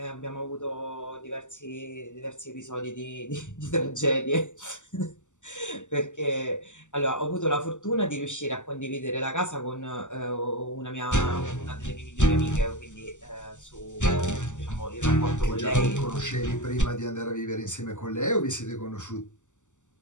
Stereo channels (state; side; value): late; right; 0.85 ms